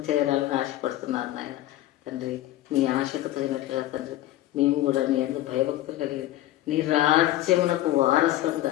చేరాలని ఆశపడుతున్నారు నాయన. తండ్రి నీ ఆశకు తగినట్లుగా తండ్రి మేము కూడా నీ యందు భయభక్తులు కలిగి నీ రాజ్యమునకు వారసులుగా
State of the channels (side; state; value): right; quieter; 14.8 dB